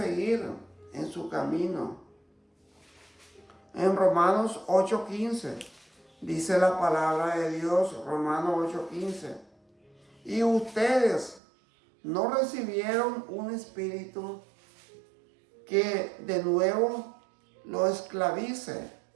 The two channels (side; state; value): left; drops out; at 11.4 s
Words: en su camino. En Romanos 8:15 dice la palabra de Dios, Romanos 8:15. Y ustedes no recibieron un espíritu que de nuevo lo esclavice